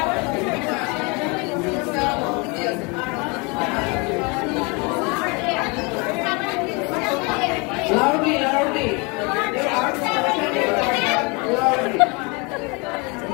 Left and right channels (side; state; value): right; quieter; 29.5 dB